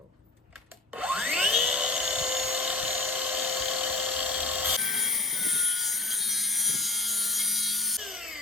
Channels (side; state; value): right; quieter; 3.1 dB